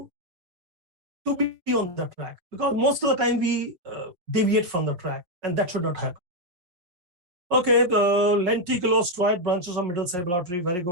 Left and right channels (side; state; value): left; late; 5.6 ms